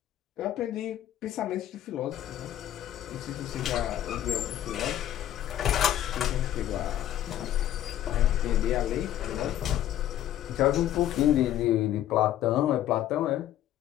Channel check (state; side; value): quieter; right; 12.2 dB